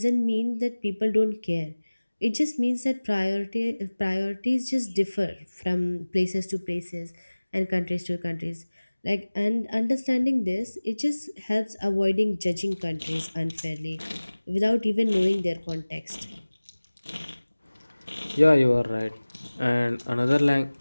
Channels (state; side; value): inverted; both; correlation -1.00